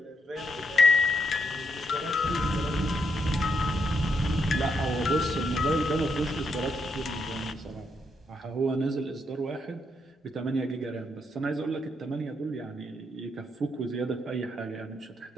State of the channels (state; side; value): normal; both; correlation 0.77